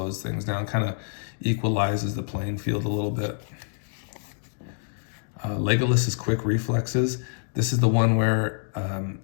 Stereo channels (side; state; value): right; silent; digital silence